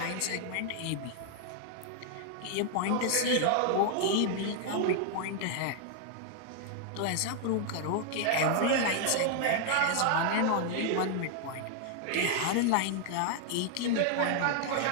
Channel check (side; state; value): both; different; correlation 0.00